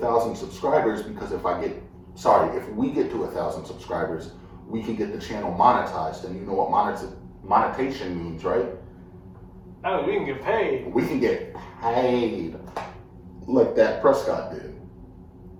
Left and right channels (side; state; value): both; identical; correlation 1.00